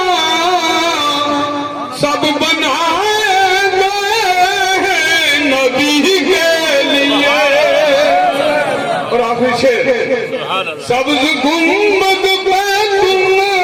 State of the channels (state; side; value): identical; both; correlation 1.00